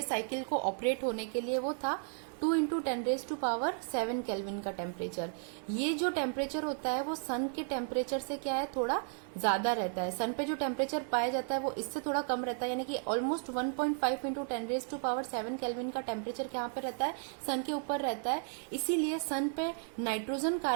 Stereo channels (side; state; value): left; silent; 55 dB below the other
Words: साइकिल को ऑपरेट होने के लिए, वो था 2 इंटू 10⁻⁷ केल्विन का टेम्परेचर। ये जो टेम्परेचर होता है वो सन के टेम्परेचर से क्या है, थोड़ा ज्यादा रहता है। सन पे जो टेम्परेचर पाया जाता है वो इससे थोड़ा कम रहता है, यानी कि ऑलमोस्ट 1.5 इंटू 10⁻⁷ केल्विन का टेम्परेचर यहाँ पे रहता है, सन के ऊपर रहता है। इसीलिए सन पे नाइट्रोजन